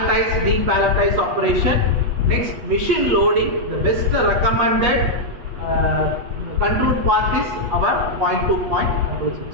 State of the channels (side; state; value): left; late; 8.3 ms